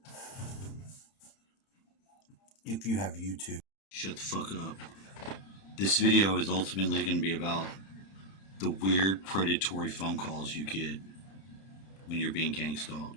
If you have YouTube. Shut the fuck up. This video is ultimately going to be about the weird predatory phone calls you get when you're being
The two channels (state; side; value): late; right; 31 ms